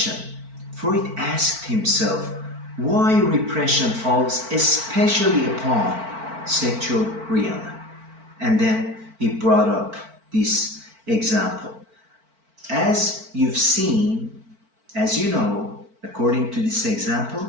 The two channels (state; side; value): late; left; 4.5 ms